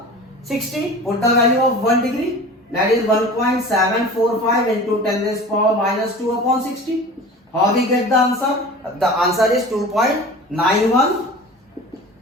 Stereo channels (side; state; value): both; normal; correlation 0.38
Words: 60. Put the value of 1 degree, that is 1.745 into 10 raised power minus 2 upon 60. How we get the answer? The answer is 2.91